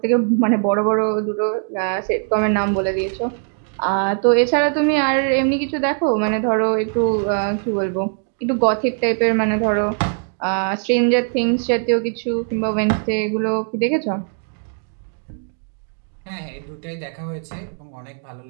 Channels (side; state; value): left; silent; 59 dB below the other